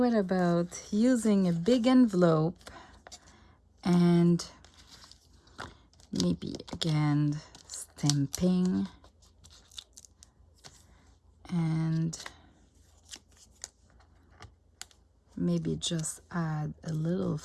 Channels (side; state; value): both; identical; correlation 1.00